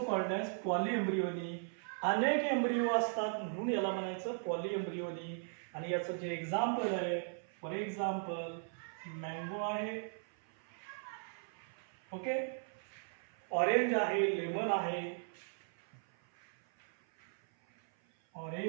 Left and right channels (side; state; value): left; silent; 53 dB below the other